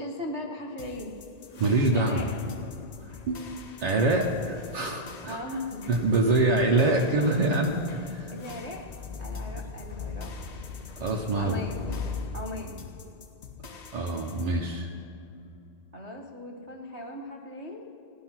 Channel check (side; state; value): left; late; 1.9 ms